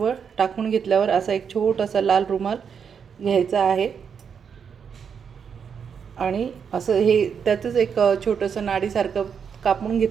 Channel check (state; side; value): quieter; left; 6.9 dB